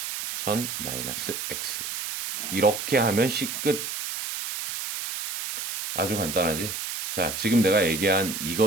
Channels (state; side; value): noise; right; hiss, 5 dB below the sound